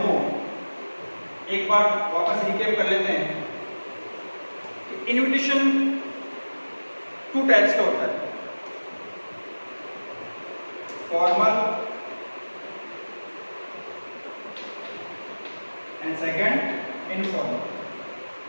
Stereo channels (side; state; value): both; inverted; correlation -1.00